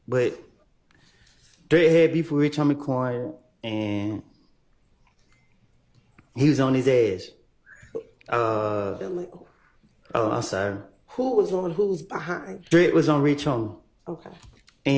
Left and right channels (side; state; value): both; identical; correlation 1.00